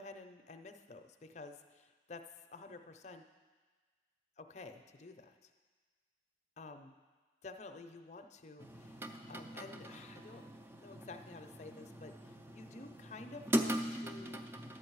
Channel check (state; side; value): normal; both; correlation 0.71